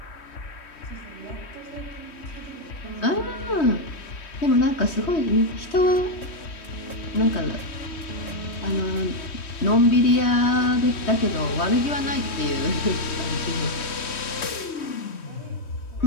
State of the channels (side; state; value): right; late; 3.2 ms